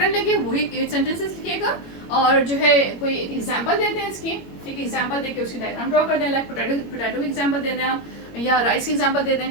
लगे वही 8 सेंटेंसेस लिखिएगा. और जो है कोई एक एग्जाम्पल देते हैं इसकी. ठीक है. एग्जाम्पल देके उसकी डायग्राम ड्रॉ कर दें. लाइक पोटैटो की एग्जाम्पल दे दें आप, या राइस की एग्जाम्पल दे दें.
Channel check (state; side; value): late; right; 21 ms